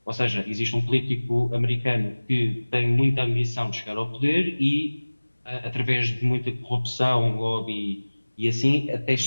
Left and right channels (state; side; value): inverted; both; correlation -1.00